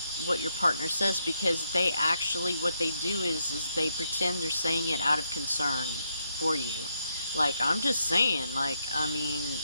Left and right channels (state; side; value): inverted; both; correlation -0.79